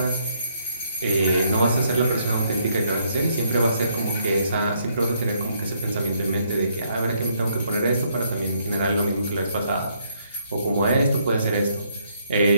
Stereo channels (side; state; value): both; inverted; correlation -0.71